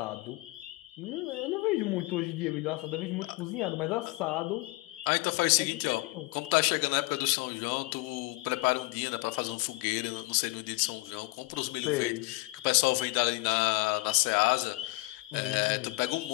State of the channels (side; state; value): right; quieter; 22.9 dB